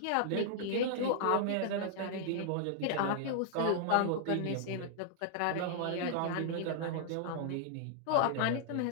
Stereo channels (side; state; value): both; different; correlation -0.01